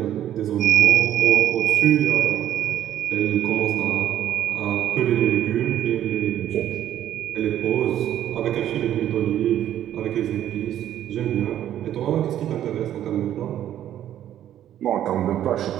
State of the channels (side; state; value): left; quieter; 11.5 dB